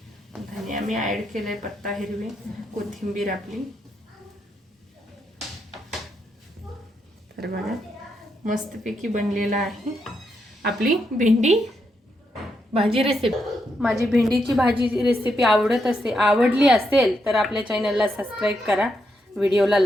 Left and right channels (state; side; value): normal; both; correlation 0.81